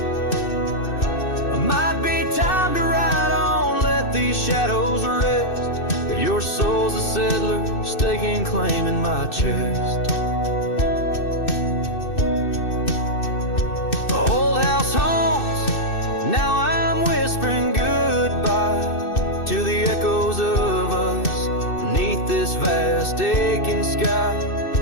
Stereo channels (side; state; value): right; late; 2.6 ms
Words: Might be time to ride on, let these shadows rest. Your soul's a settler, staking claim in my chest. Old house haunts, now I'm whispering goodbye to the echoes of us beneath this vast aching sky,